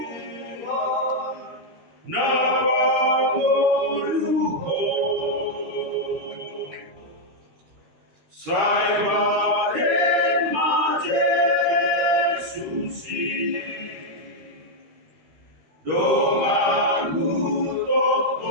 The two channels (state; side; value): late; left; 13 ms